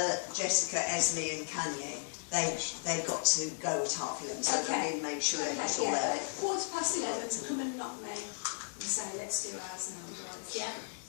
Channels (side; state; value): right; silent; digital silence